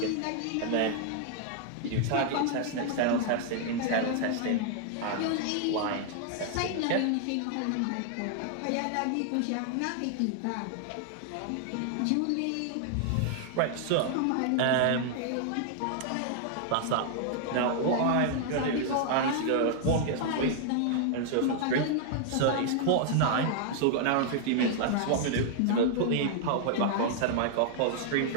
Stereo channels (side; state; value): both; different; correlation 0.00